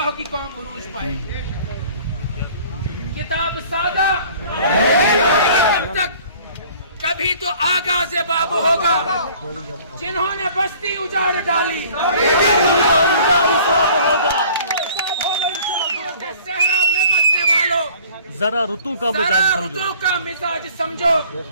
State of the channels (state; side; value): inverted; both; correlation -0.51